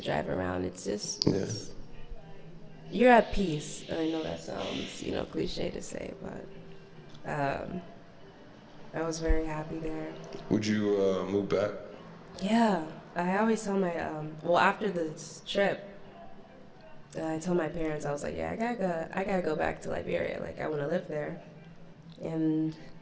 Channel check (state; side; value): identical; both; correlation 1.00